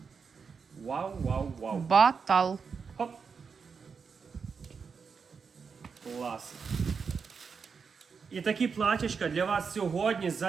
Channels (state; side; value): quieter; left; 5.7 dB